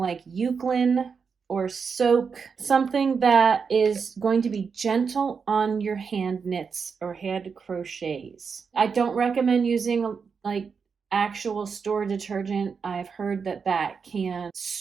Eucalyptus or soak, something that is going to be gentle on your hand knits or hand crochets. I don't recommend using like actual store detergent. I've heard that can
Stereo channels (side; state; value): left; quieter; 5.7 dB